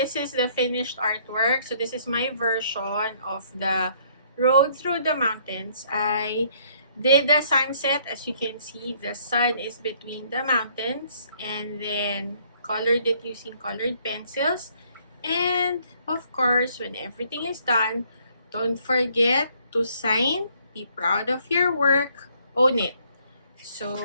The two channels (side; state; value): both; inverted; correlation -0.64